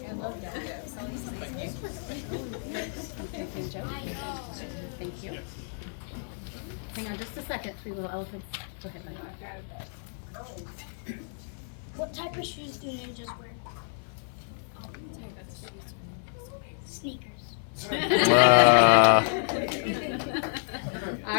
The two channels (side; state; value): right; silent; 56 dB below the other